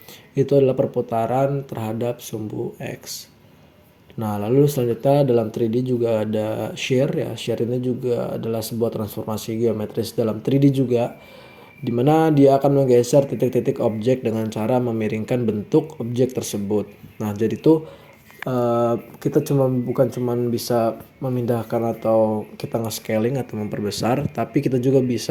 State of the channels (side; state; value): both; identical; correlation 1.00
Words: itu adalah perputaran terhadap sumbu X. Nah, lalu selanjutnya dalam 3D juga ada shear ya. Shear ini juga adalah sebuah transformasi geometris dalam 3D juga, di mana dia akan menggeser titik-titik objek dengan cara memiringkan bentuk objek tersebut. Nah, jadi tuh kita bukan cuma bisa memindahkan atau kita nge-scaling atau memperbesar, tapi kita juga